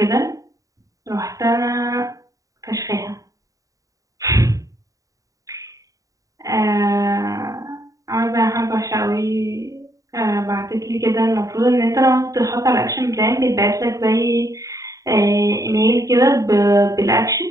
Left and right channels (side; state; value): left; late; 0.16 ms